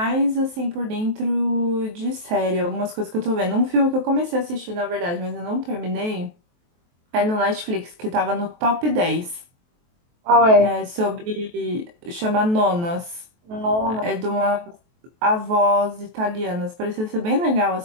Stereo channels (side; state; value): left; late; 23 ms